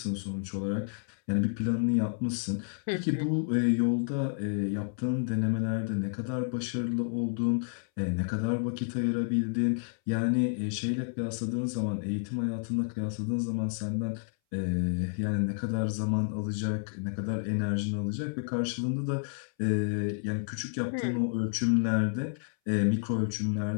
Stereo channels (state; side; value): silent; right; 58 dB below the other